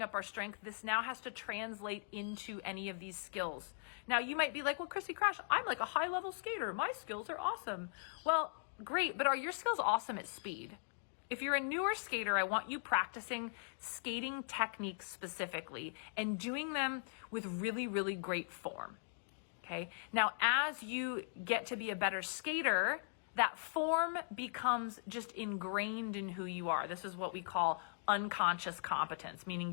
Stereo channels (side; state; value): right; silent; digital silence